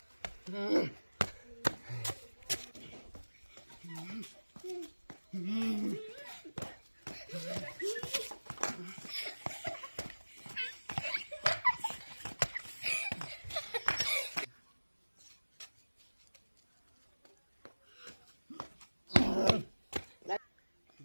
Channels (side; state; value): both; inverted; correlation -1.00